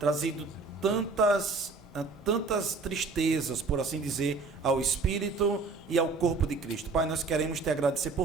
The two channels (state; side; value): quieter; left; 4.1 dB